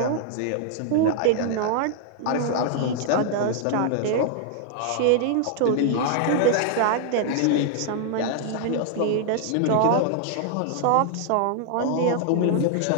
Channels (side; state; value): both; different; correlation 0.00